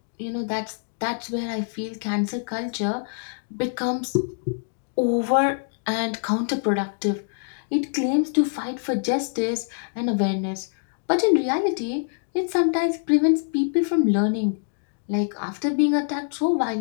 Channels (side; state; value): right; silent; digital silence